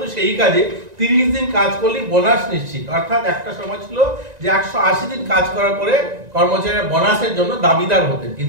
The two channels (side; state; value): left; late; 1.9 ms